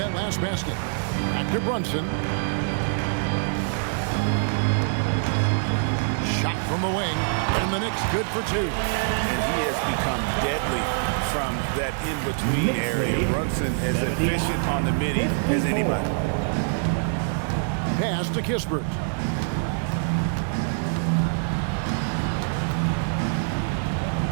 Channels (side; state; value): left; silent; digital silence